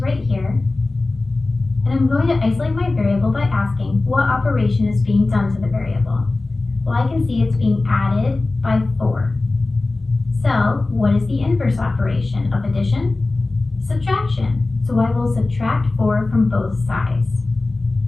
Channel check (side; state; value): right; quieter; 3.2 dB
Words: here. And I'm going to isolate my variable by asking what operation is being done to the variable. Well, I can see it's being added by 4. So what is the inverse operation of addition? Subtraction. So I will subtract 4 from both sides.